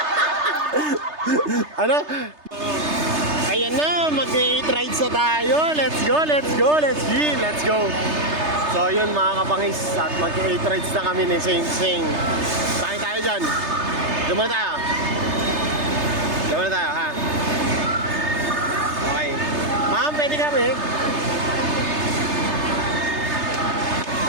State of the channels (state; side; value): late; left; 3.3 ms